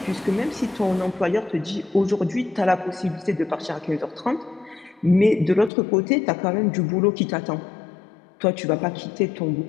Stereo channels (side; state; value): right; drops out; at 5.7 s